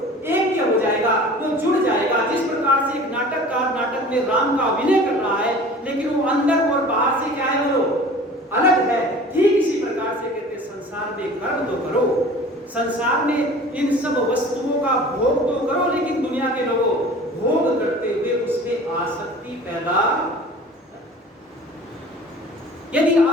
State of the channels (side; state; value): both; normal; correlation 0.43